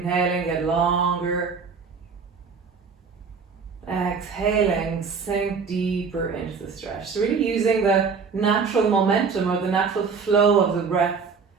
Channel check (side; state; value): left; quieter; 5.4 dB